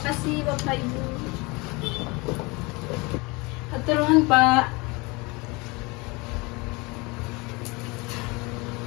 kasih bapak ibu. Hatur nuhun Pak.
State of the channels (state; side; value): quieter; right; 26.1 dB